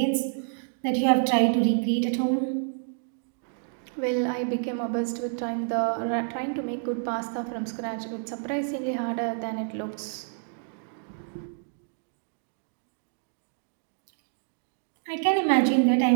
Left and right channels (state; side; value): silent; left; digital silence